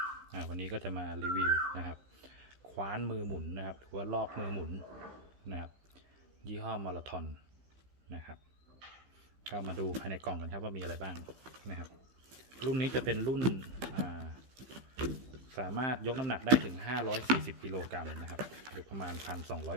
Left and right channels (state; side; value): late; left; 15 ms